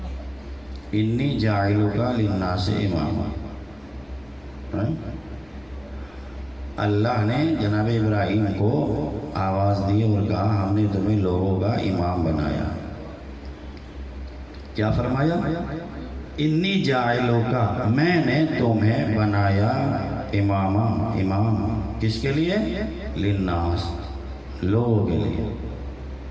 انی جاعلک للناس اماما۔ اللہ نے جناب ابراہیم کو آواز دی اور کہا ہم نے تمہیں لوگوں کا امام بنایا۔ کیا فرمایا؟ انی جاعلک، میں نے تمہیں بنایا اماما، امام کس کے لیے؟ للناس، لوگوں کے لیے۔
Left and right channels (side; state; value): left; noise; rumble, 29 dB below the sound